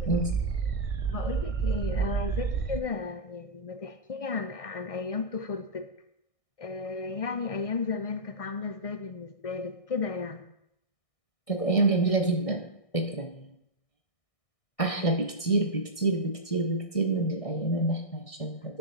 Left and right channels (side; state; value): right; late; 1.6 ms